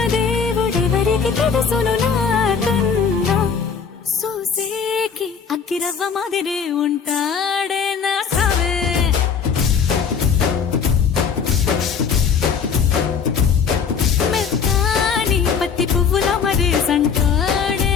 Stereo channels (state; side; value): quieter; right; 6.4 dB